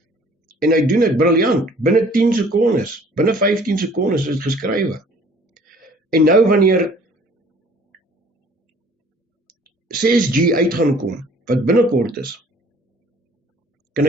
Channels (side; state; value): both; normal; correlation 0.54